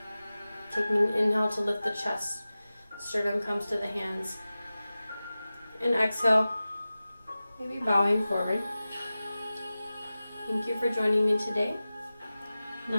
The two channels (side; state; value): both; inverted; correlation -0.96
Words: Taking an inhale to lift the chest, sternum comes to the hands. And exhale, maybe bowing forward. Thank you for joining me today.